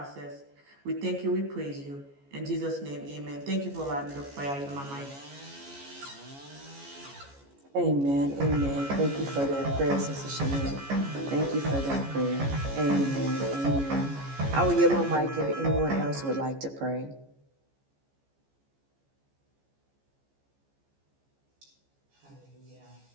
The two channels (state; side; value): late; left; 14 ms